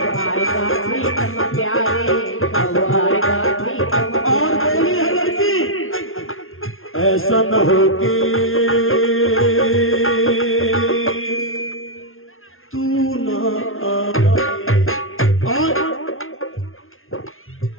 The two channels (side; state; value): right; late; 0.60 ms